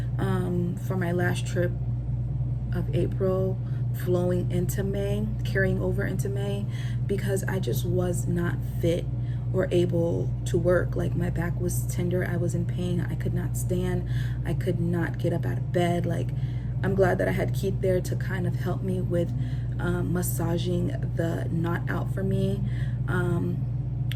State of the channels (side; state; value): both; identical; correlation 1.00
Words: for my last trip of April, flowing into May, carrying over into May, because I just was not fit or able to work. Like, my back was tender, I was in pain, I could not stand, I could not get up out of bed. Like, I'm glad that I had Keith there to kind of help me with massaging the knot out for me.